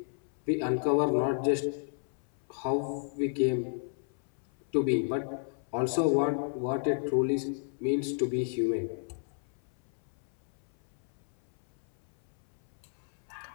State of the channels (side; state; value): right; silent; 56 dB below the other